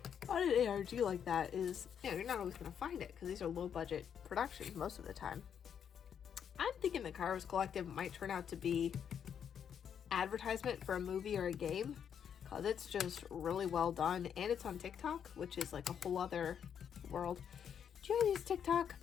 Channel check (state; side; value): quieter; right; 8.2 dB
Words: ARG like that is, you know, you're not always going to find it, because these are low budget productions most of the time. I'm thinking the Kairos Collective might turn out to be advertisement for a movie or a game, because it's just really well done, and it's on TikTok, which is like a whole other world. Do you guys use TikTok?